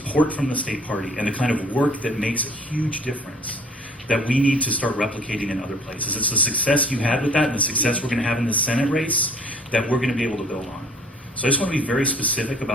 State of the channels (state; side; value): normal; both; correlation 0.53